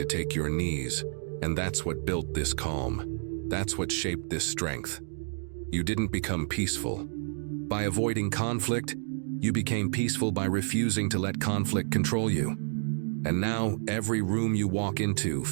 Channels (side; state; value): left; silent; digital silence